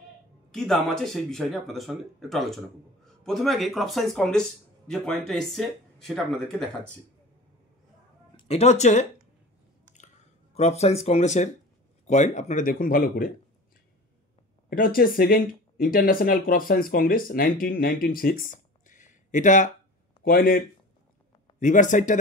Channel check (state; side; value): normal; both; correlation 0.37